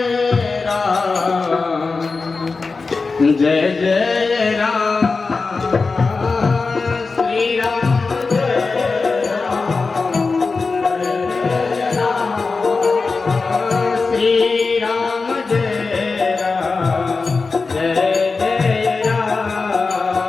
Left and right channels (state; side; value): quieter; right; 4.2 dB